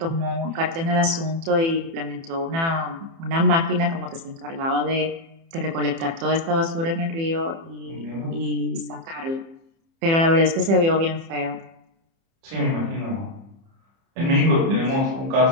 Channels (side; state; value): left; late; 30 ms